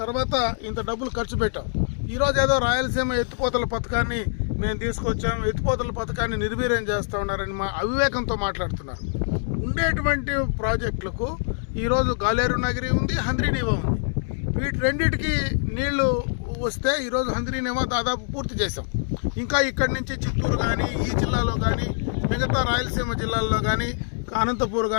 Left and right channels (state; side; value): silent; right; digital silence